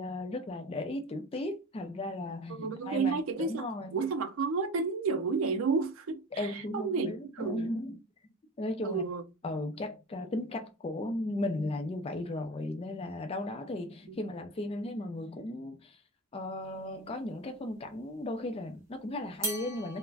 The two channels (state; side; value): normal; both; correlation 0.32